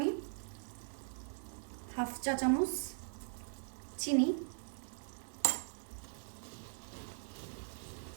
হাফ চা চামচ চিনি।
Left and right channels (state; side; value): silent; left; digital silence